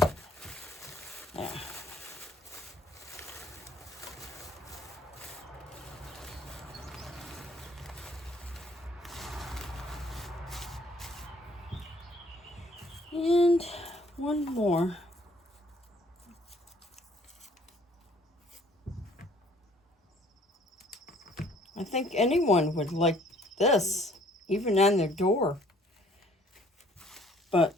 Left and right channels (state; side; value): normal; both; correlation 0.58